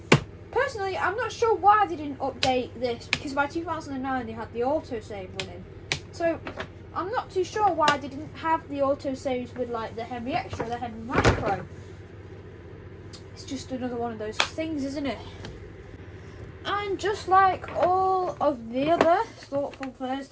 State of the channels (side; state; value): both; identical; correlation 1.00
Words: personally, I'm not sure why they didn't update this because by 2009 they had the autosave running. So, I'm not too sure why they didn't have the autosaves with like the Henry Extra, the Henry Micro. It's just another one of those things, isn't it? And just like all of the other Thoughtful